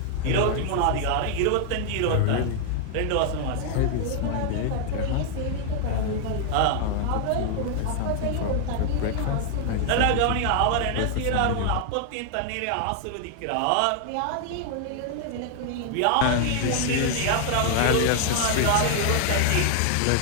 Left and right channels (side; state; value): both; different; correlation 0.00